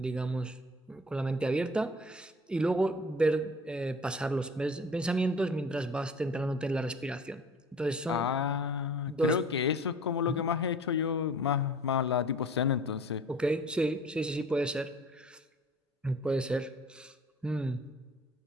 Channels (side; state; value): both; normal; correlation 0.46